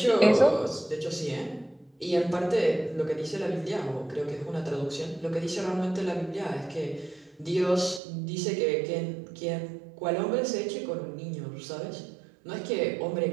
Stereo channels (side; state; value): left; drops out; at 8.0 s